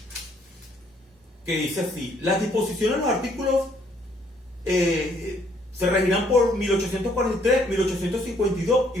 que dice así: las disposiciones de los artículos se regirán por 1843, 1852 y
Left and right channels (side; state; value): both; normal; correlation 0.67